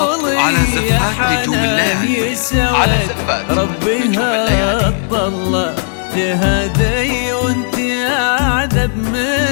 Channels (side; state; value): right; silent; 68 dB below the other